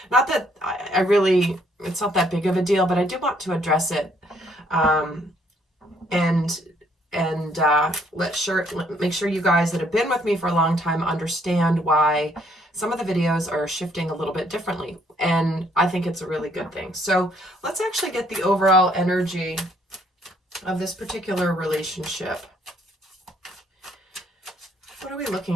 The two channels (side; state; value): both; normal; correlation 0.67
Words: not that I really, it's not that big of a deal, but I do want to address it. Make sure you guys that have been with me for a long time understand why some of the videos are shifting a little bit differently. And I think it's a really good thing. So let's actually get the overall energy of this particular relationship. What are we